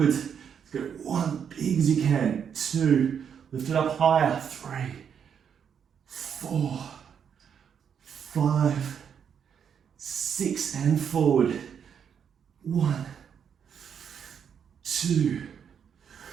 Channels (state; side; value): quieter; left; 7.7 dB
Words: Let's go 1, big as you can. 2, lift it up higher. 3, 4, 5, 6, and forward. 1, 2,